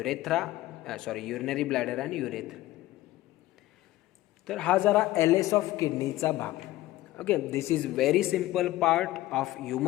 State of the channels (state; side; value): quieter; right; 16.3 dB